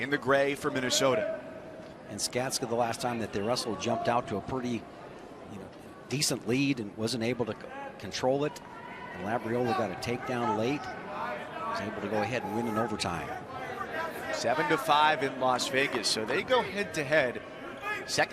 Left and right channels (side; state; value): both; identical; correlation 1.00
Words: the gray for Minnesota. And Skatzka, the last time that they wrestled, jumped out to a pretty decent lead and wasn't able to control it. And Labriola got a takedown late. Was able to go ahead and win in overtime. 7-5 in Las Vegas. So they go head-to-head.